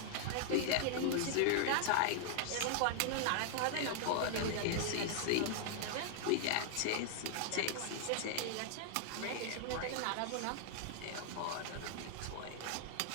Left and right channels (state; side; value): different; both; correlation 0.00